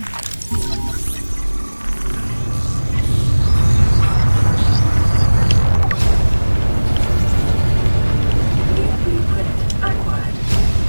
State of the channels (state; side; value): inverted; both; correlation -1.00